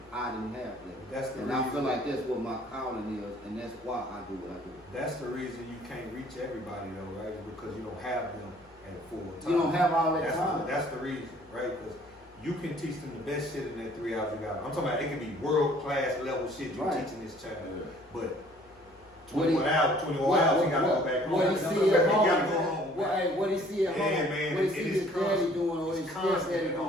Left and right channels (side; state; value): left; noise; hum, 28 dB below the sound